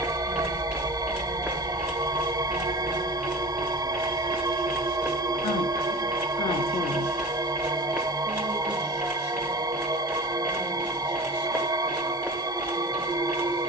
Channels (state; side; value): normal; both; correlation 0.34